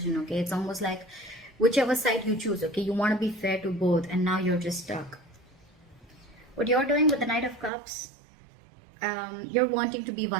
okay? It's almost like whichever side you choose, okay? You want to be fair to both and now you're just stuck. What you're doing with the Knight of Cups, you're wanting to be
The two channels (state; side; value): drops out; left; at 7.7 s